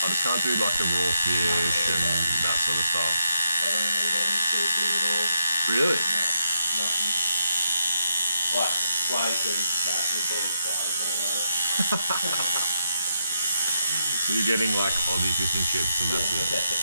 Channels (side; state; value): both; inverted; correlation -0.80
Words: just can't do like the raw fish and that sort of stuff. I don't eat any seafood at all. Really? No, nothing. Like flake and that would be as far as I go. You're getting like Aussie fish and chips and that's it.